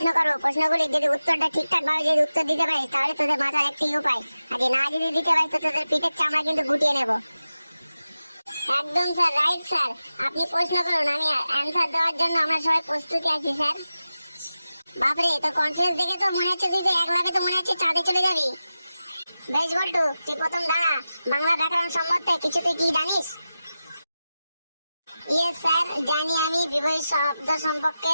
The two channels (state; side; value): inverted; both; correlation -0.93